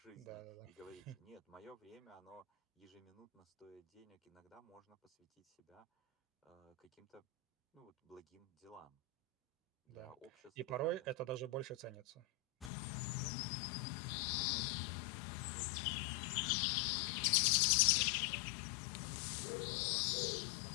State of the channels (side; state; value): right; drops out; at 12.7 s